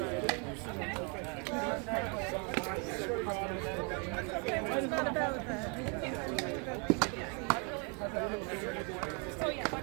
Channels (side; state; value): left; quieter; 35.7 dB